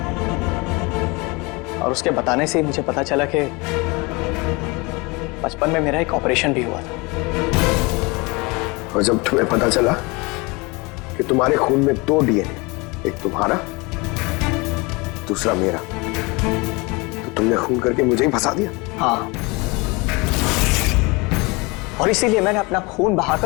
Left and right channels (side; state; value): right; quieter; 26.4 dB